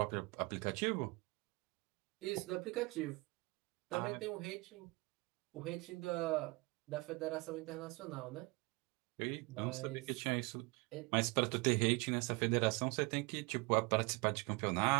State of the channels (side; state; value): left; quieter; 26.5 dB